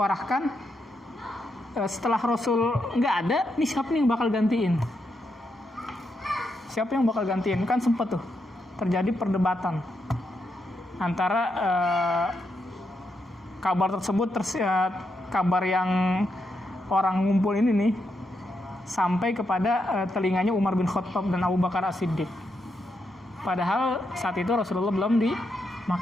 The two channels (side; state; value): both; normal; correlation 0.82